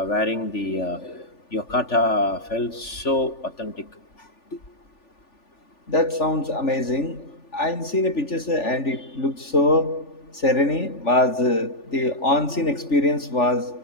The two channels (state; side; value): late; right; 3.4 ms